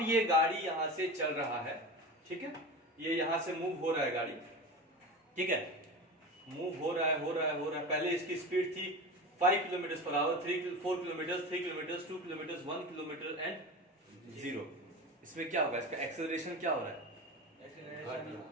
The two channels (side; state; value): both; normal; correlation 0.28